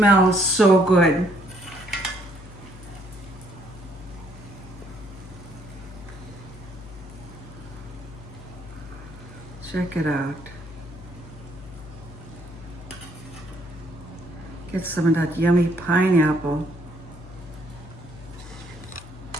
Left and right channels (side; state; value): left; noise; hum, 16 dB below the sound